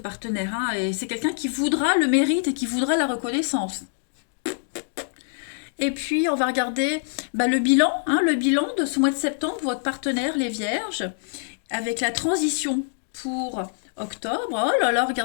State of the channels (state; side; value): silent; right; digital silence